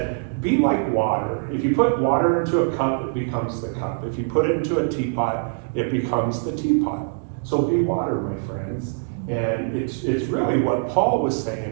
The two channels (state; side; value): silent; left; digital silence